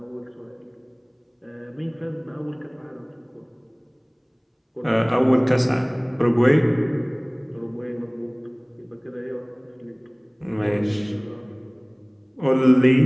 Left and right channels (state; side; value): identical; both; correlation 1.00